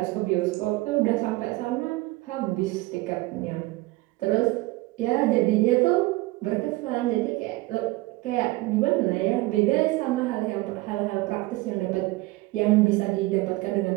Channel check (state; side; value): quieter; left; 20.2 dB